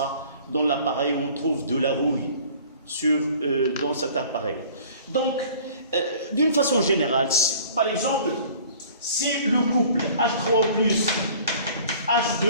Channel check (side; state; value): both; inverted; correlation -0.49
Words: dans l'appareil où on trouve de la rouille dans cet appareil. Donc, d'une façon générale, par exemple, si le couple H3O plus